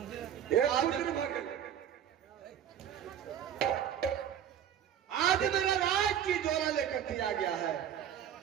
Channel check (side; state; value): left; quieter; 9.6 dB